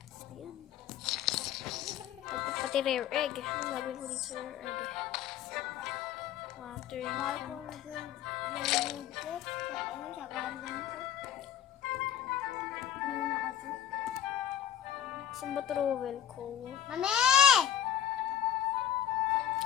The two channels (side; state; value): right; quieter; 10.4 dB